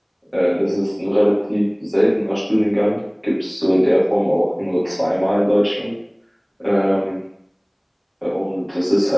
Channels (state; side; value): identical; both; correlation 1.00